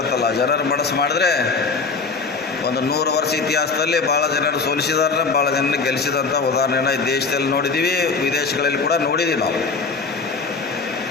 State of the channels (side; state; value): right; quieter; 4.5 dB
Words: ಅಲ್ಲ. ಜನರ ಮನಸ್ಸು ಮಾಡಿದ್ರೆ ಒಂದು 100 ವರ್ಷ ಇತಿಹಾಸದಲ್ಲಿ ಭಾಳ ಜನರು ಸೋಲಿಸಿದಾರೆ, ಭಾಳ ಜನರು ಗೆಲ್ಲಿಸಿದಂಥ ಉದಾಹರಣೆನ ಈ ದೇಶದಲ್ಲಿ ನೋಡಿದ್ದೀವಿ, ವಿದೇಶಗಳಲ್ಲಿ ಕೂಡ ನೋಡಿದ್ದೀವಿ ನಾವು.